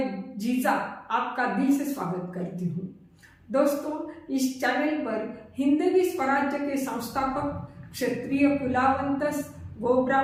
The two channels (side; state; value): both; identical; correlation 1.00